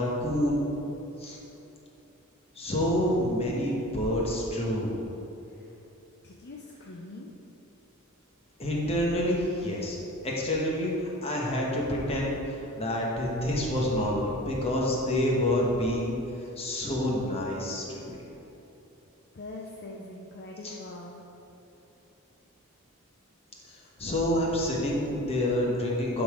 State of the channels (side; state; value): both; normal; correlation 0.40